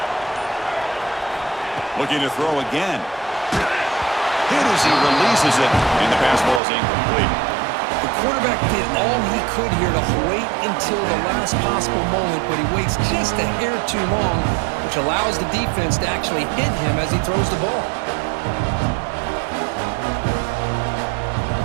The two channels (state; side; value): drops out; left; at 6.6 s